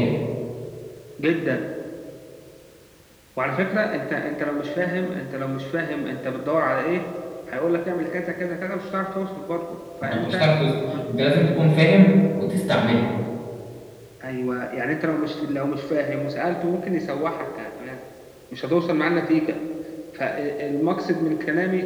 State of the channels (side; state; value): both; identical; correlation 1.00